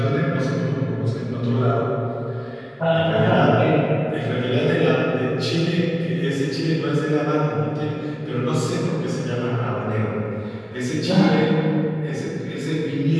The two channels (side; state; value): both; identical; correlation 1.00